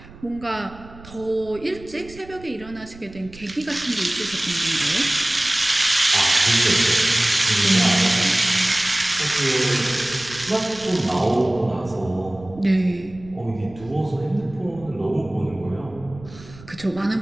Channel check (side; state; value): right; noise; rumble, 20 dB below the sound